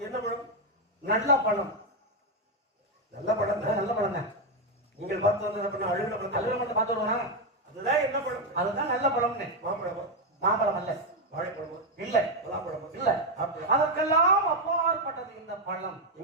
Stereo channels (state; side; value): normal; both; correlation 0.04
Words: என்ன பழம்? நல்ல பழம். நல்ல பழம் தான். நல்ல பழம் தான். நீங்கள் பார்த்து வந்தது அழுகிற பழம். அழுகிற பழத்தை பார்த்து வருவானா? அதுதான் என்ன பழம்? அதுதான் நல்ல பழம்னு. மாம்பழமா? மாம்பழம் அல்ல. வாழைப்பழமா? இல்ல. பலாப்பழமா? இல்ல. அதற்கெல்லாம் அப்பாற்பட்டது இந்த பழம்.